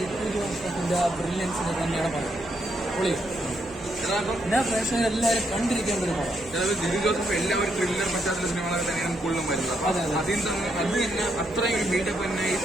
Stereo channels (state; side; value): noise; right; hum, 22 dB below the sound